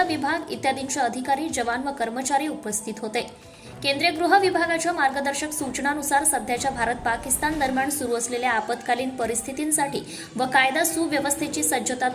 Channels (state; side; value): identical; both; correlation 1.00